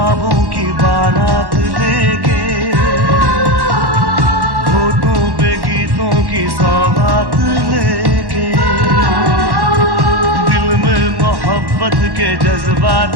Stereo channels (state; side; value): late; left; 1.1 ms